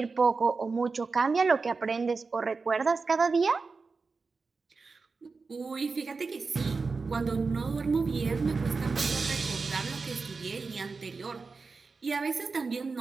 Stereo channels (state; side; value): quieter; left; 4.4 dB